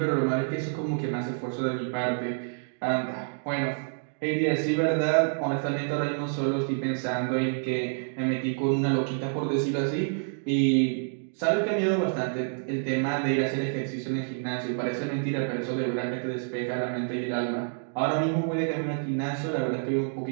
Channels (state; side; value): silent; left; digital silence